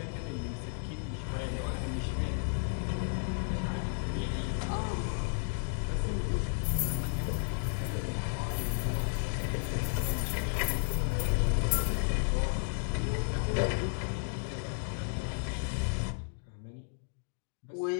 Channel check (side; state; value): right; silent; digital silence